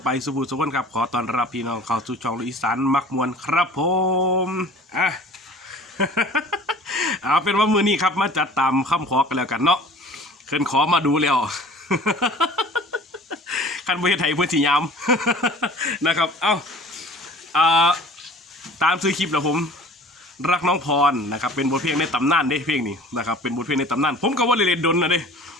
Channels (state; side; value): normal; both; correlation 0.46